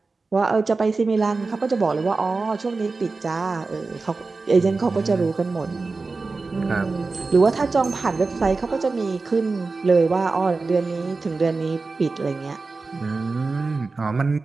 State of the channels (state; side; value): quieter; left; 3.9 dB